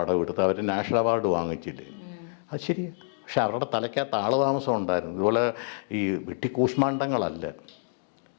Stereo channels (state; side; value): silent; right; 60 dB below the other